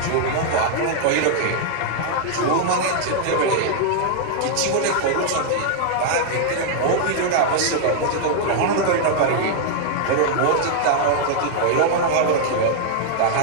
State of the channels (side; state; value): both; different; correlation -0.01